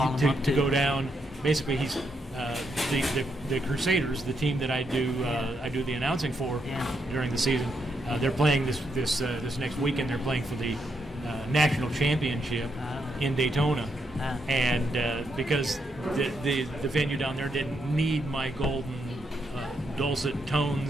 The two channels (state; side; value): normal; both; correlation 0.80